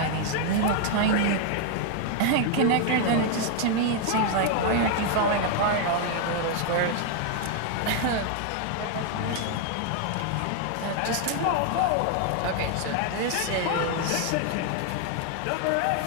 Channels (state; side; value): different; both; correlation 0.00